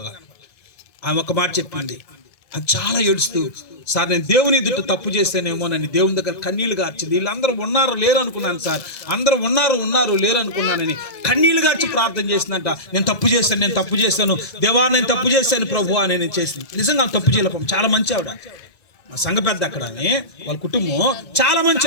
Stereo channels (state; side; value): late; right; 2.0 ms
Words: ఆమె ఒక మాట చెప్పింది. అది చాలా ఏడుస్తూ, సార్ నేను దేవుని ఎదుట తప్పు చేస్తేనేమో నన్ను దేవుని దగ్గర కన్నీళ్లు గార్చింది. వీళ్ళందరూ ఉన్నారు లేరు అనుకున్నాను సార్, అందరూ ఉన్నారు లేరు అనుకున్నానని కన్నీళ్లు గార్చి ప్రార్థన చేసిందంట. నేను తప్పు చేస్తాను దేవా, నేను తప్పు చేశాను ప్రభు అని నేను చేసింది. నిజంగా తప్పు చేయలేపం. చాలా మంచి ఆవిడ, మా సంఘ పెద్ద అక్కడ, వాళ్ళ కుటుంబం చాలా మంచి